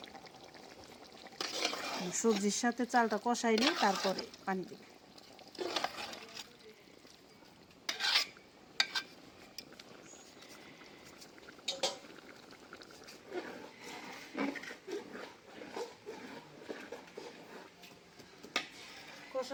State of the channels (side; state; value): both; identical; correlation 1.00